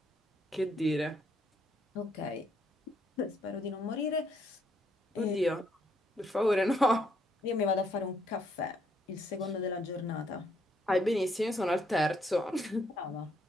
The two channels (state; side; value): normal; both; correlation 0.71